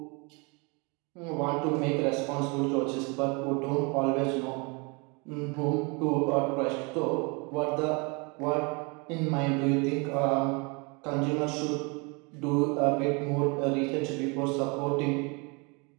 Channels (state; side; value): quieter; left; 30.6 dB